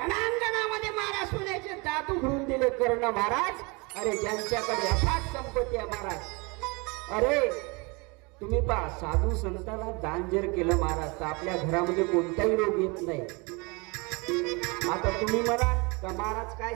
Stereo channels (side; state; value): left; quieter; 28.2 dB